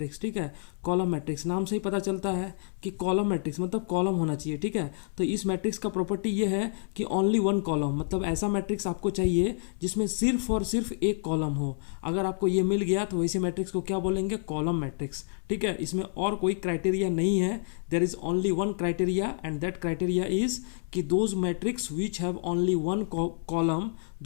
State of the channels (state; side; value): silent; right; 59 dB below the other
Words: ठीक है, कॉलम मैट्रिक्स नाम से ही पता चलता है कि कॉलम मैट्रिक्स मतलब कॉलम होना चाहिए। ठीक है, तो इस मैट्रिक्स का प्रॉपर्टी ये है कि ओनली वन कॉलम, मतलब ऐसा मैट्रिक्स आपको चाहिए जिसमें सिर्फ और सिर्फ एक कॉलम हो। अगर आपको ये मिल गया तो वैसे मैट्रिक्स को क्या बोलेंगे, कॉलम मैट्रिक्स। ठीक है, इसमें और कोई क्राइटेरिया नहीं है, there is only one criteria and that criteria is कि those matrix which have only one column,